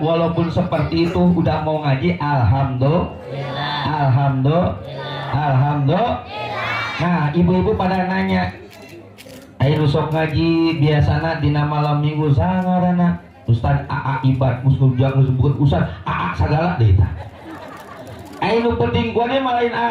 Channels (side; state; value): both; identical; correlation 1.00